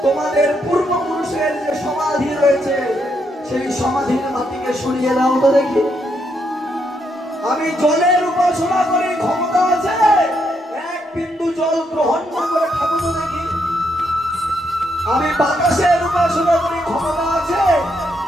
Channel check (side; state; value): both; normal; correlation 0.77